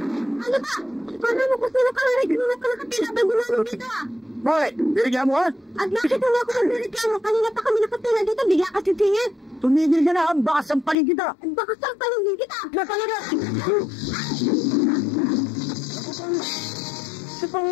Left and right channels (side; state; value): right; drops out; at 11.0 s